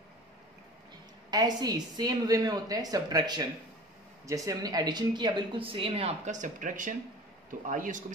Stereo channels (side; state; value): both; normal; correlation 0.40